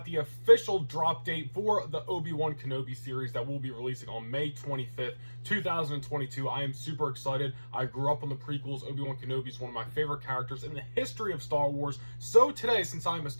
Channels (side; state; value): both; inverted; correlation -1.00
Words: the official drop date for the Obi-Wan Kenobi series that we'll be releasing on May 25th, 2022. I am super excited. I grew up on the prequels. Obi-Wan Kenobi is one of my favorite characters in the history of Star Wars. So today, since I'm a